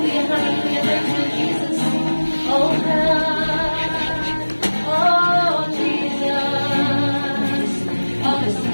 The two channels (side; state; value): both; inverted; correlation -1.00